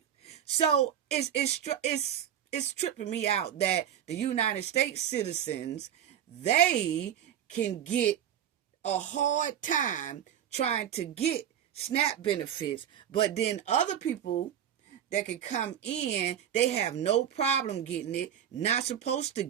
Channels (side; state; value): left; quieter; 9.9 dB